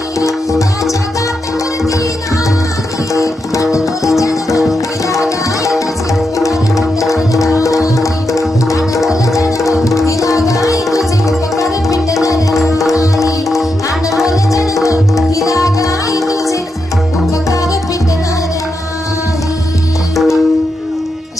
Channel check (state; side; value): normal; both; correlation 0.85